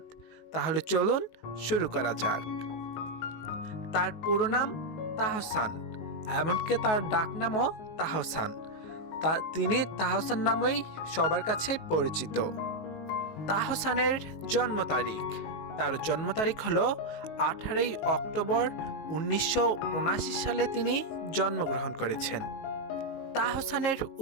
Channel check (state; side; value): late; right; 19 ms